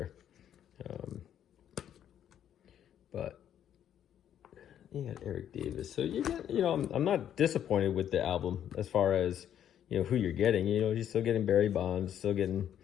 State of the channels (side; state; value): right; quieter; 10.0 dB